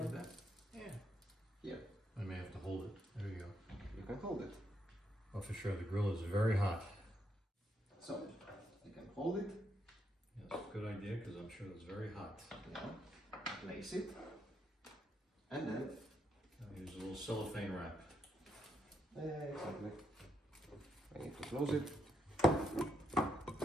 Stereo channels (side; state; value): both; normal; correlation 0.78